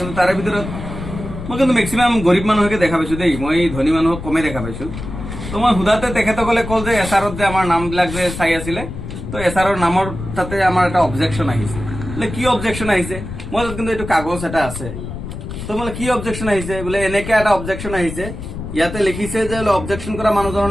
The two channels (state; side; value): noise; left; rumble, 9 dB below the sound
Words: তাৰে ভিতৰত মই কিন্তু মেক্সিমাম গৰীব মানুহকে দেখা পাইছো দেই, মই ধনী মানুহক কমে দেখা পাইছো। তো মই সোধাতে তেখেতসকলে কল যে এছআৰত যে আমাৰ নামবিলাক যে চাই আছিলে, তো এছআৰৰ নামৰ তাতে আমাৰ এটা অবজেকশ্যন আহিছে। বোলে কি অবজেকশ্যন আহিছে, মই কিন্তু এইটো কাগজ এটা আছে। তো বোলে কি অবজেকশ্যন আহিছে, বোলে এনেকে এটা অবজেকশ্যন আহিছে, ইয়াতে লিখিছে যে অবজেকশ্যন কৰা মানুহজনৰ